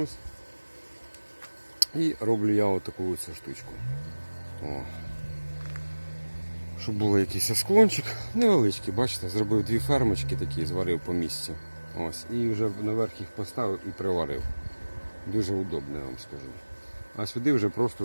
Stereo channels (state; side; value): inverted; both; correlation -1.00